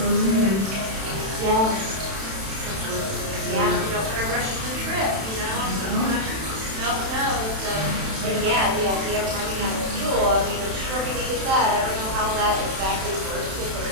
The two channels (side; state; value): left; late; 31 ms